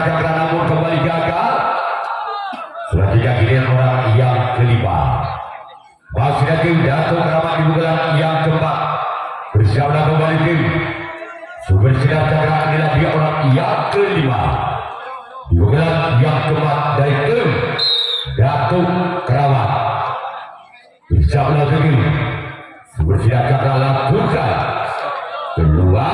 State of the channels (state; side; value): identical; both; correlation 1.00